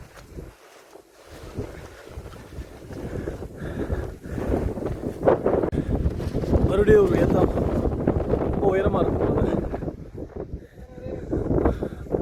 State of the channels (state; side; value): identical; both; correlation 1.00